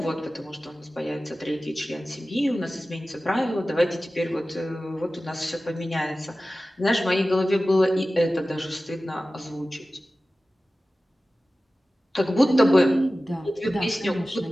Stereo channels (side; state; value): both; normal; correlation 0.96